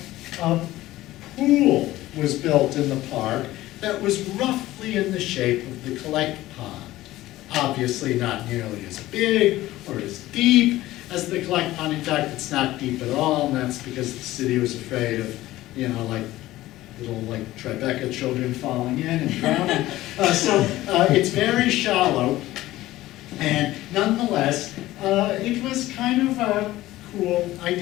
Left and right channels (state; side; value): quieter; right; 16.4 dB